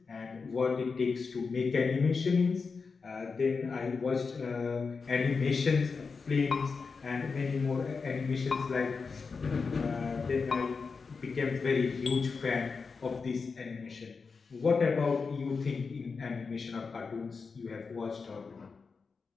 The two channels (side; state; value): right; quieter; 4.9 dB